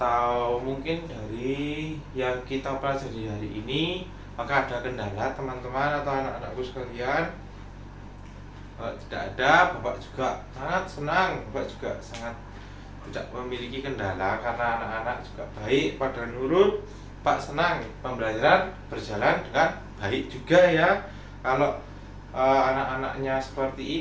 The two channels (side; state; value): both; identical; correlation 1.00